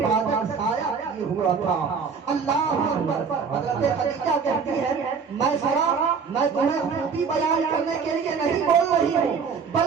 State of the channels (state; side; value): quieter; left; 5.8 dB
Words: سایہ کیے ہوا تھا۔ اللہ اکبر، حضرت خدیجہ کہتی ہے میسرہ میں تمہیں خوبی بیان کرنے کے لیے نہیں بول رہی ہوں